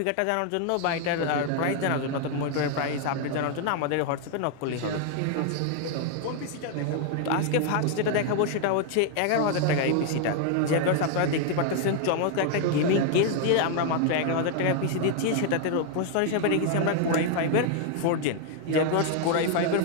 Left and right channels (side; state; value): both; different; correlation 0.00